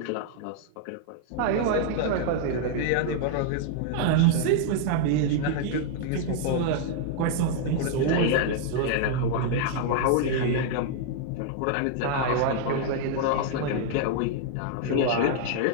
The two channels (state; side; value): different; both; correlation 0.00